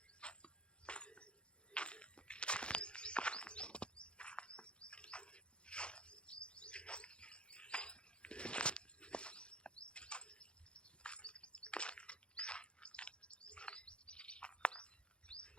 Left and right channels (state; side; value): late; right; 0.055 ms